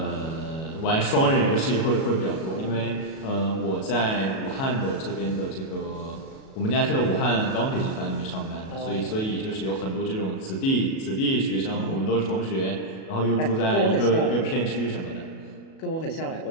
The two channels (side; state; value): right; late; 37 ms